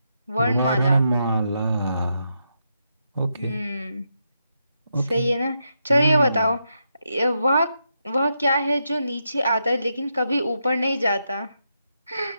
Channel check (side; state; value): both; inverted; correlation -0.83